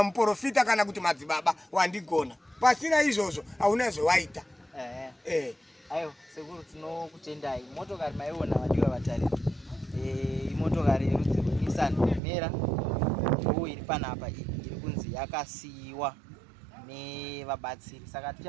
muprofita kana kuti madzibaba, wandigona. Pasina izvozvo hauna zvawaita. Ayo sekuru tinokutendai. Motokari maiona vadiwa vatariri, imotokari yerudzi rweNissan Mera ndo iri panapa, iri kunzi yakasiyiwa nevabatsiri. Saka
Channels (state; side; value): drops out; left; at 12.2 s